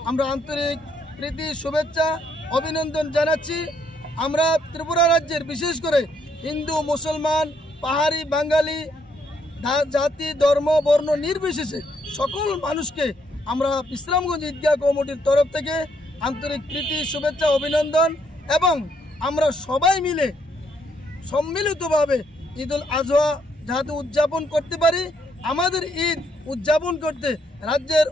আমরা আন্তরিক প্রীতি, শুভেচ্ছা, অভিনন্দন জানাচ্ছি। আমরা ত্রিপুরা রাজ্যের বিশেষ করে হিন্দু, মুসলমান, পাহাড়ি, বাঙালি, জাতি, ধর্ম, বর্ণ নির্বিশেষে সকল মানুষকে আমরা বিশ্রামগঞ্জ ঈদগাহ কমিটির তরফ থেকে আন্তরিক প্রীতি, শুভেচ্ছা, অভিনন্দন এবং আমরা সবাই মিলে সম্মিলিতভাবে ঈদুল আজহা যাতে উদযাপন করতে পারি। আমাদের ঈদ উদযাপন করতে রাজ্যের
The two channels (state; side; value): normal; both; correlation 0.72